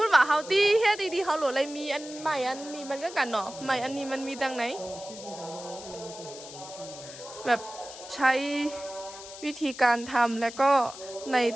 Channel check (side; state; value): left; noise; hiss, 14 dB below the sound